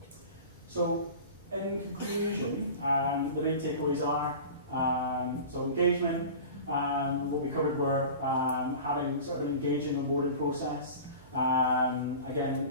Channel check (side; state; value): both; inverted; correlation -0.36